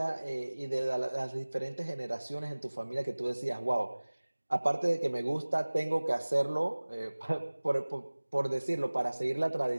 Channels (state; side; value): inverted; both; correlation -1.00